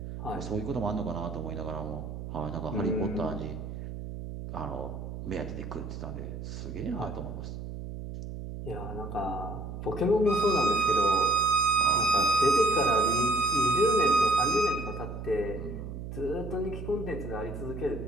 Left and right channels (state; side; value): noise; right; hum, 8 dB below the sound